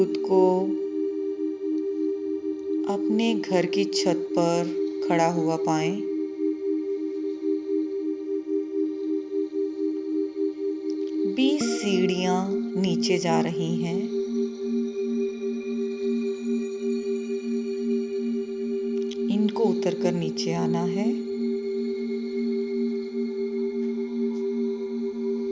को अपने घर की छत पर खड़ा हुआ पाएं। बीस सीढ़ियां नीचे जा रही हैं। इनको उतरकर नीचे आना है।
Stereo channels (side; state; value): both; identical; correlation 1.00